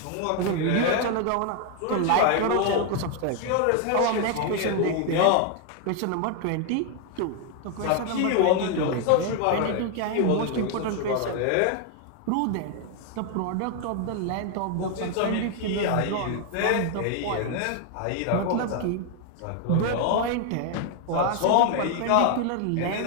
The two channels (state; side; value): different; both; correlation 0.00